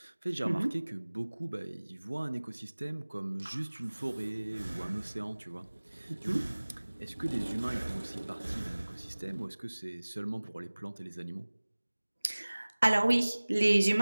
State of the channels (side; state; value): both; inverted; correlation -1.00